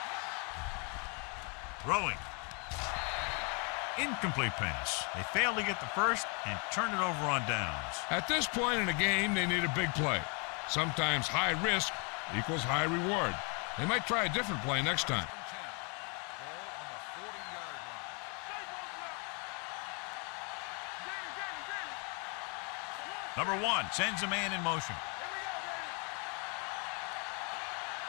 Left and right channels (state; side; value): quieter; right; 35.3 dB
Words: Throwing. Incomplete pass. They fail to get the first and turn it over on downs. At this point in the game, they need a big play. Sometimes high risk equals high reward. They might try a different play next time. Number 1 sends a man in motion.